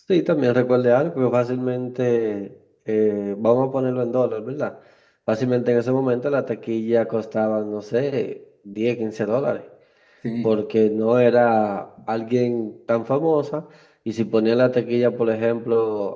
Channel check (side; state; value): both; identical; correlation 1.00